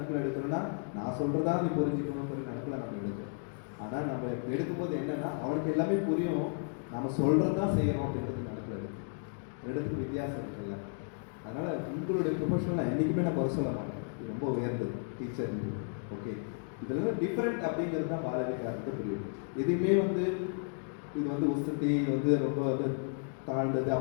எடுக்கிறோன்னா நான் சொல்கிறதா நீ புரிஞ்சுக்கணுங்கிற நினைப்பில் நம்ம எடுக்கிறோம். ஆனால் நம்ம எடுக்கும்போது என்னென்னா அவனுக்கு எல்லாமே புரியும், நம்ம சொல்கிறது தான் செய்யணும் அப்படின்றது நினைப்பில் எடுத்துக்கு வித்தியாசம் இருக்குல்ல. அதனால் உங்களுடைய ப்ரொஃபஷனில் என்றைக்குமே நான் குறை சொல்ல மாட்டேன், இது ரொம்ப உயர்ந்தது டீச்சர். ஓகே, இதில் டிஃப்ரெண்ட் அப்படிங்கிறது தான் பாலவிகாரத்தை புரியும். எதுவுமே வந்து இது வந்து உசத்தி வந்து ரொம்ப வந்து தாழ்ந்தது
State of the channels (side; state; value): right; silent; 55 dB below the other